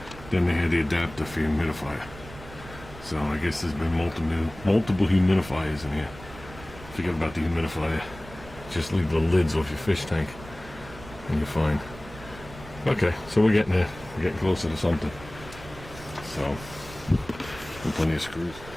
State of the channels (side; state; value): right; noise; rumble, 17 dB below the sound